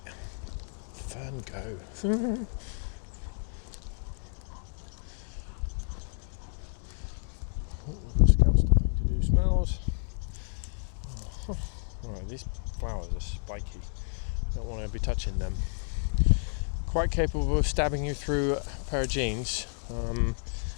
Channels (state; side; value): silent; right; 57 dB below the other